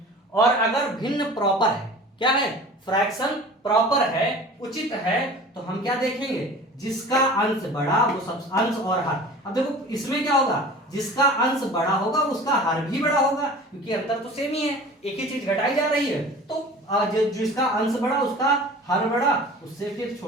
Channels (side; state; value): both; normal; correlation 0.41